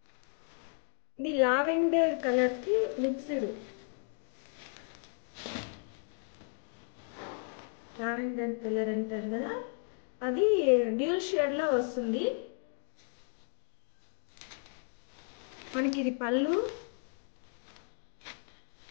ఇది లావెండర్ కలర్ కి మిక్స్డ్, లావెండర్ కలర్ అంటారు కదా, అది డ్యూల్ షేడ్ లో వస్తుంది. మనకి ఇది పళ్ళు,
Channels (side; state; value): right; silent; 55 dB below the other